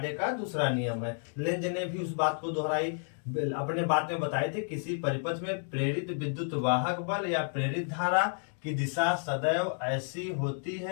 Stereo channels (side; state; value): right; silent; 57 dB below the other